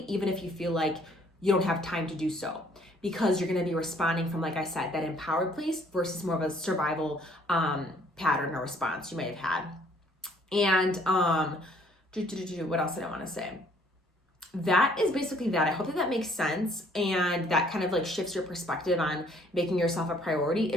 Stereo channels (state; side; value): normal; both; correlation 0.61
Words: even if you feel like you don't have time to do so, because you're going to be responding from, like I said, that empowered place versus more of a survival pattern or response you may have had. And what else did I want to say? That is basically that. I hope that makes sense and that kind of like shifts your perspective on making yourself a priority.